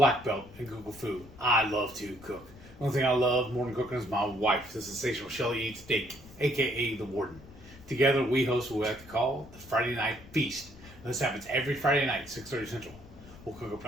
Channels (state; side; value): noise; left; rumble, 20 dB below the sound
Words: belt in Google Food. I love to cook. The only thing I love more than cooking is my wife, the sensational Shelly Eats Steak, aka the Warden. Together we host what we like to call the Friday Night Feast. And this happens every Friday night, 6:30 Central. We'll cook up